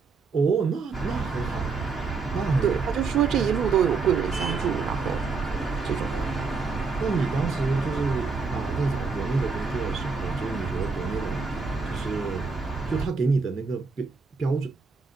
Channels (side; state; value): left; quieter; 4.6 dB